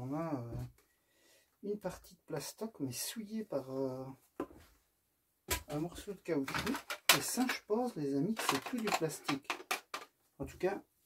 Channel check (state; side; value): identical; both; correlation 1.00